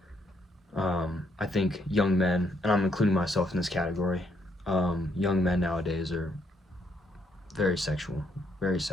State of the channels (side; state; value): both; normal; correlation 0.73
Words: I think young men, and I'm including myself in this category, young men nowadays are very sexual,